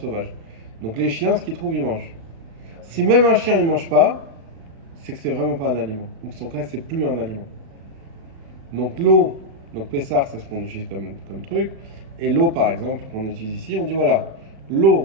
Donc les chiens, ce qu'ils trouvent, ils mangent. Si même un chien, il mange pas, c'est que c'est vraiment pas un aliment. Ou que son cas, c'est plus un aliment. Donc l'eau, donc Pessar, c'est ce qu'on utilise comme truc. Et l'eau, par exemple, qu'on utilise ici, on dit voilà,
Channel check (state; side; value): late; left; 36 ms